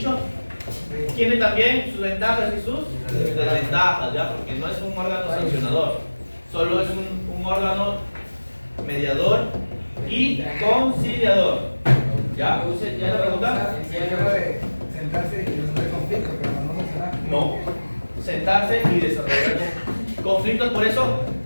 tiene también sus ventajas y sus desventajas, ¿ya? Porque no es un órgano sancionador, solo es un órgano mediador y conciliador. ¿Ya? ¿Ya la pregunta? Sentarse y resolver conflictos, pero no sancionar. No. Sentarse y desarrollar conflictos, por eso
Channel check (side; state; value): both; inverted; correlation -1.00